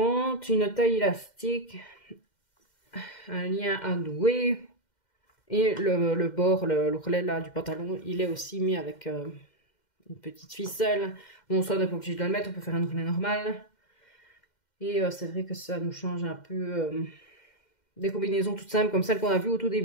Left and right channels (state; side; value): late; right; 2.1 ms